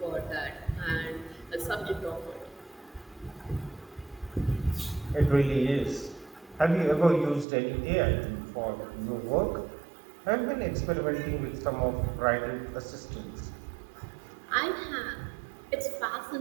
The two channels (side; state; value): left; drops out; at 7.5 s